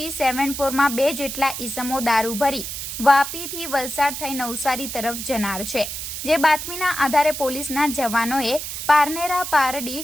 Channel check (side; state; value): right; noise; hiss, 6 dB below the sound